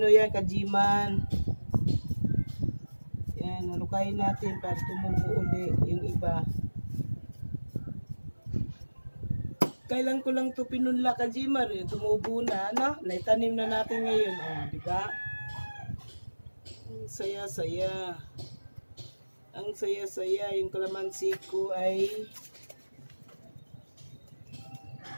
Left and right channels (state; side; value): inverted; both; correlation -1.00